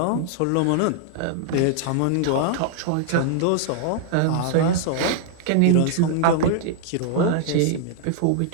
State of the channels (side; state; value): both; different; correlation -0.01